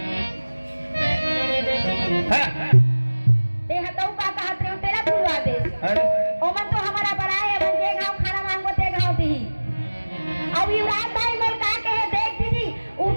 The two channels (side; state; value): both; inverted; correlation -1.00